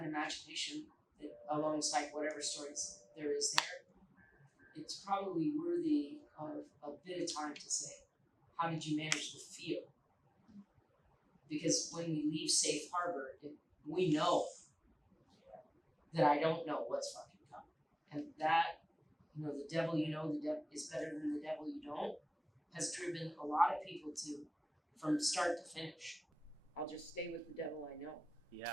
imagination that alongside whatever stories there is there, it's probably worthy of a bit of time to say, how did you manage the feel? Because when we leave safe harbor, we know that I don't know what's fucking coming. And that, the devil the devil is better than the devil you don't. has driven a lot of people to, from start to finish, I'll just stay with the devil I know.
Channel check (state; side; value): normal; both; correlation 0.98